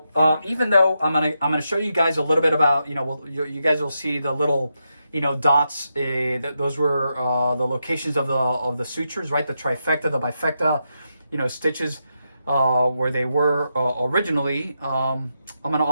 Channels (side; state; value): both; inverted; correlation -0.85